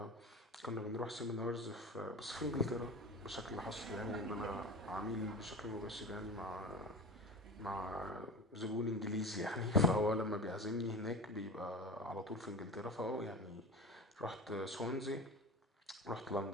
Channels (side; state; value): both; normal; correlation 0.30